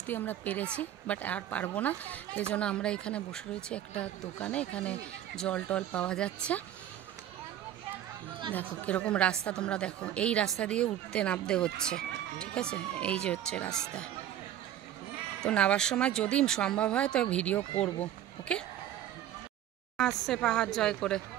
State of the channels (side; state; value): left; quieter; 11.6 dB